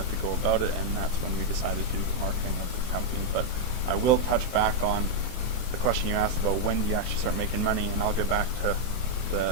to go about it, and that's when we decided to do the marketing of the company. But I will touch back on the question you asked about when do you actually start making money, and I'll get back to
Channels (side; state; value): right; late; 23 ms